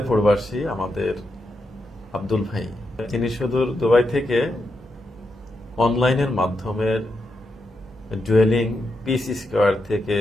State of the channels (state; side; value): normal; both; correlation 0.84